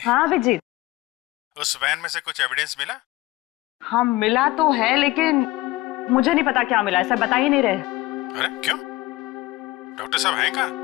हाँ अभिजीत। उस वैन में से कुछ एविडेंस मिला? हाँ मिला तो है, लेकिन मुझे नहीं पता क्या मिला है। सर बता ही नहीं रहे। अरे क्यों? डॉक्टर साहब हैं कहाँ?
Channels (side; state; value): right; quieter; 19.2 dB